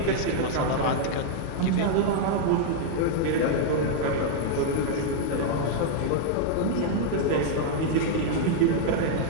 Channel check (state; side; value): different; both; correlation -0.01